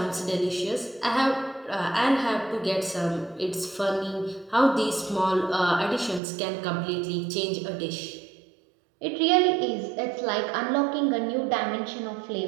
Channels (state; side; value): drops out; left; at 6.2 s